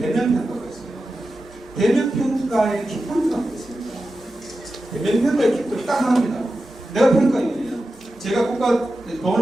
있어요. 대면평가의 기본표가 있습니다. 대면평가의 기본표 딱 하나입니다. 내가 평가위원이에요. 제가 국가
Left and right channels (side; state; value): both; normal; correlation 0.92